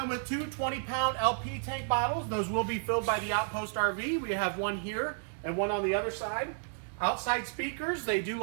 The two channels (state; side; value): silent; left; 56 dB below the other